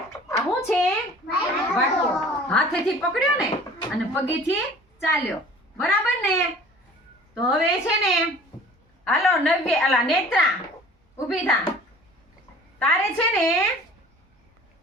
આ શું છે? વાટકો. હાથેથી પકડ્યો ને અને પગેથી ચાલ્યો, બરાબર ને? તો હવે છે ને હાલો નેત્રા ઊભી થા. તારે છે ને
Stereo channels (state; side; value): normal; both; correlation 0.47